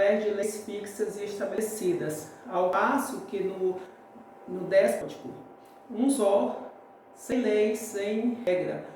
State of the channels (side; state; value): both; identical; correlation 1.00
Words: de leis fixas e estabelecidas, ao passo que no déspótico, um só, sem lei, sem regra,